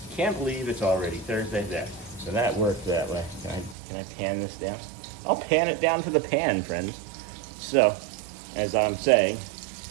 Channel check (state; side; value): drops out; left; at 3.8 s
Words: can't believe it's already Thursday there. So that worked that way. Can I pan this down? I'll pan it down to the pan, friends. So, as I'm saying,